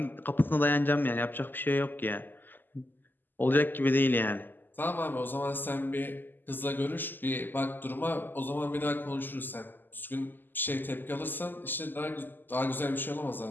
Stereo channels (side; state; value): right; late; 0.090 ms